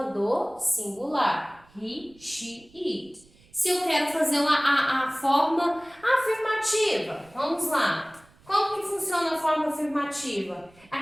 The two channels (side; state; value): right; noise; rumble, 28 dB below the sound